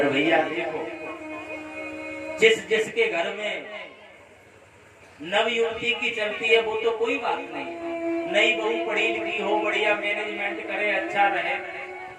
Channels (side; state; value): both; identical; correlation 1.00